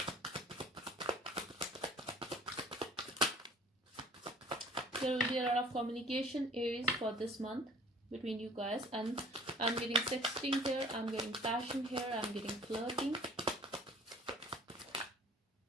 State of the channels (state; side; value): normal; both; correlation 0.49